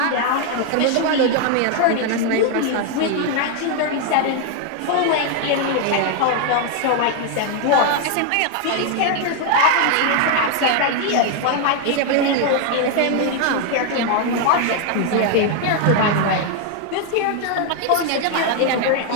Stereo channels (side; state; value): both; different; correlation 0.01